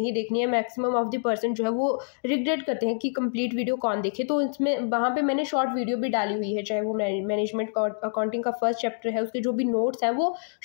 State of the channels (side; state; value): right; silent; digital silence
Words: देखनी है, मैक्सिमम ऑफ द पर्सन जो है वो रिग्रेट करते हैं कि कंप्लीट वीडियो कौन देखे, तो इसमें वहाँ पे मैंने शॉर्ट वीडियो भी डाली हुई है। चाहे वो मैनेजमेंट अकाउंटिंग का फर्स्ट चैप्टर है, उसके जो भी नोट्स हैं वो